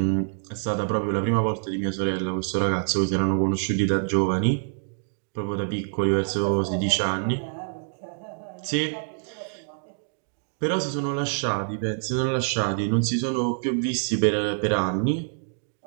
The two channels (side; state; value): left; silent; digital silence